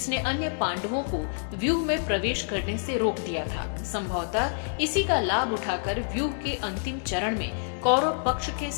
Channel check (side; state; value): right; silent; digital silence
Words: अन्य पांडवों को व्यूह में प्रवेश करने से रोक दिया था। संभवतः इसी का लाभ उठाकर व्यूह के अंतिम चरण में कौरव पक्ष के